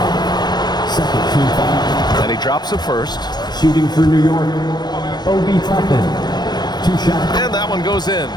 Second team foul. And he drops a first. Shooting for New York. Obi Toppin. 2 shots. And that one goes in.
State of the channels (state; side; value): late; right; 0.20 ms